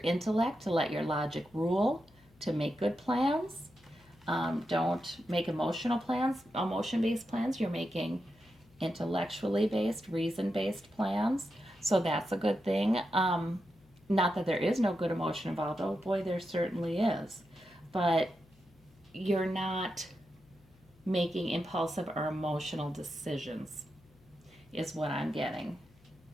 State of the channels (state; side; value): noise; left; hum, 28 dB below the sound